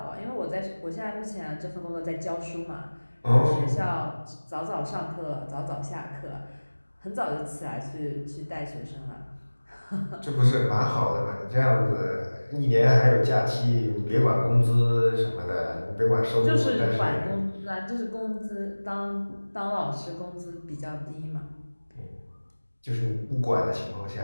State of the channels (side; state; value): both; inverted; correlation -1.00